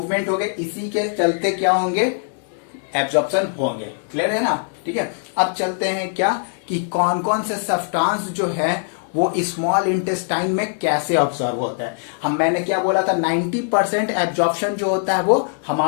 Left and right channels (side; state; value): right; silent; 65 dB below the other